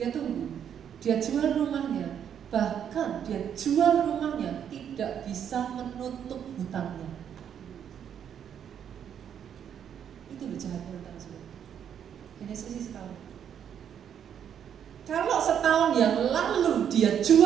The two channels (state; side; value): quieter; left; 8.7 dB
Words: tunggu. Dia jual rumahnya. Bahkan dia jual rumahnya tidak bisa menutup hutangnya. Itu loh jahatnya hutang, saudara. Hanya selisih setahun. Kalau setahun yang lalu dia